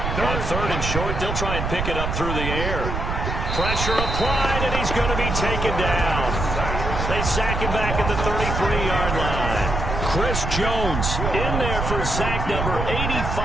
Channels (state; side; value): noise; right; rumble, 2 dB below the sound